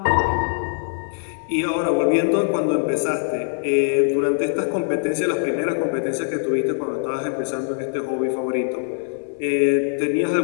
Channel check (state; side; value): silent; right; digital silence